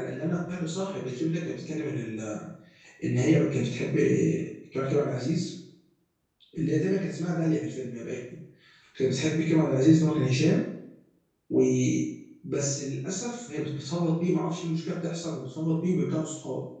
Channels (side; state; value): both; identical; correlation 1.00